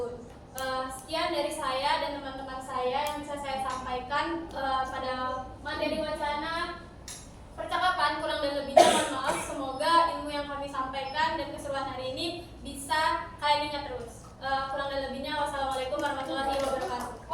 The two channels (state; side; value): identical; both; correlation 1.00